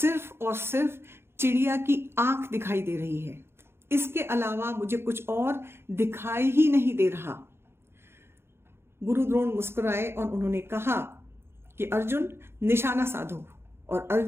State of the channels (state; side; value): late; left; 0.12 ms